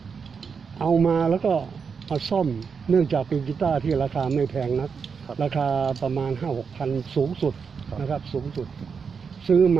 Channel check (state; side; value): quieter; left; 5.9 dB